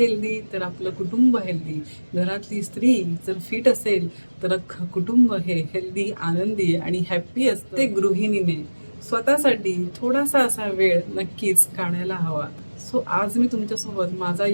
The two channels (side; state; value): both; inverted; correlation -1.00